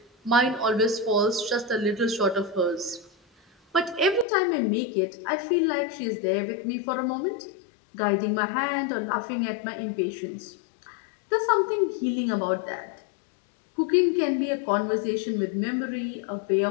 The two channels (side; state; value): right; drops out; at 4.2 s